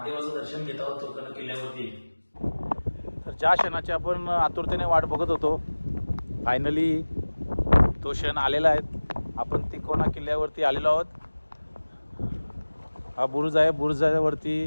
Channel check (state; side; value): inverted; both; correlation -1.00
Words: दर्शन घेत आहोत किल्ल्यावरती. तर ज्या क्षणाची आपण आतुरतेने वाट बघत होतो फायनली तो क्षण आलेला आहे. आपण तिकोना किल्ल्यावरती आलेलो आहोत. हा बुरुज आहे.